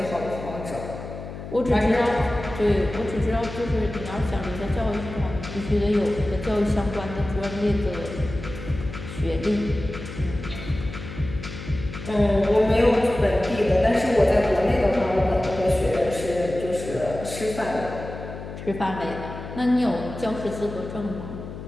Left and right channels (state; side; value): noise; left; hum, 10 dB below the sound